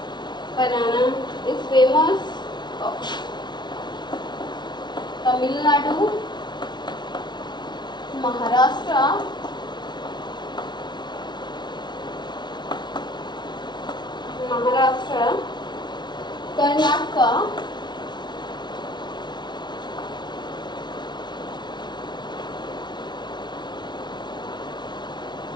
banana is famous Tamil Nadu, Maharashtra, Karnataka,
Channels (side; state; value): right; late; 0.21 ms